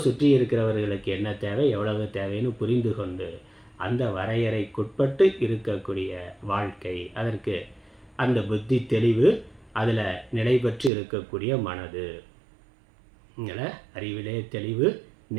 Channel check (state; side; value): drops out; left; at 10.9 s